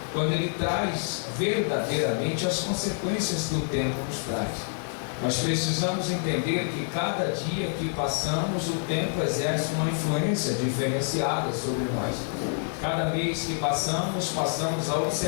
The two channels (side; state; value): right; silent; 60 dB below the other